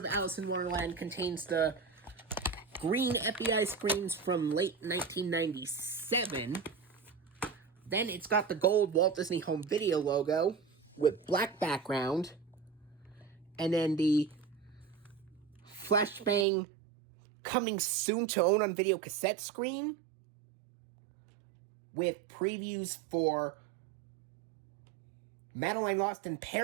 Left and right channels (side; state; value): left; drops out; at 16.4 s